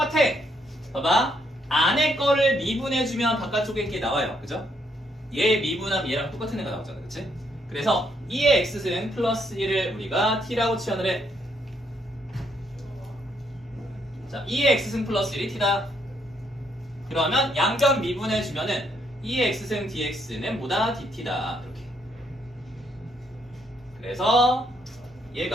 봐봐. 안에 거를 미분해주면 바깥쪽에 게 나와요. 그죠? 얘 미분하면 얘랑 똑같은 애가 나오잖아. 그치? 그래서 2의 x승 플러스 1을 우리가 t라고 치환을 해. 자, 2의 x승 플러스 1이 t다. 그러면 양변 미분해주면은 2의 x승 dx는 뭐다? dt다. 이렇게. 그래서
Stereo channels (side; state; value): both; normal; correlation 0.73